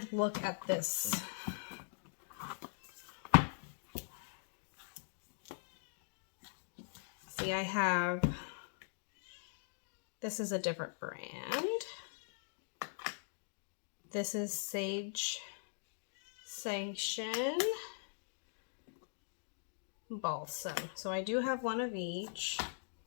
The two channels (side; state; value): right; silent; digital silence